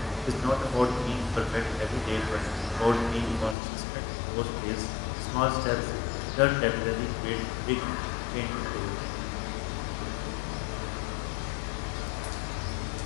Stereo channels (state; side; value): drops out; right; at 3.6 s